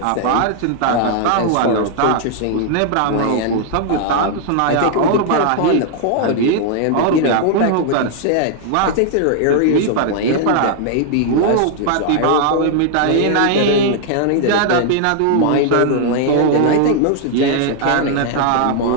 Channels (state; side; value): different; both; correlation 0.00